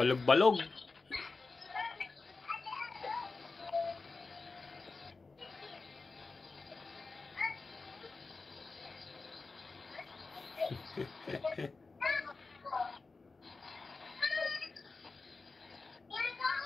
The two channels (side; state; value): right; quieter; 3.9 dB